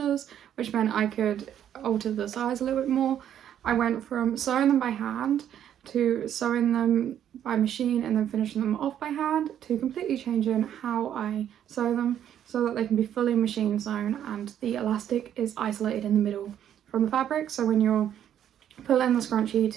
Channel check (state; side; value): quieter; left; 10.2 dB